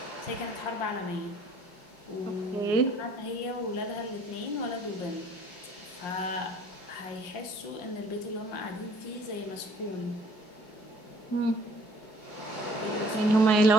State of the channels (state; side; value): late; right; 5.6 ms